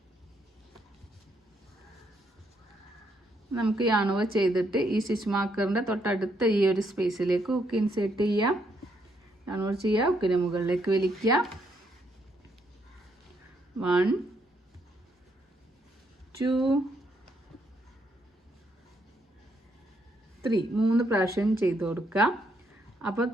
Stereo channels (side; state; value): both; normal; correlation 0.74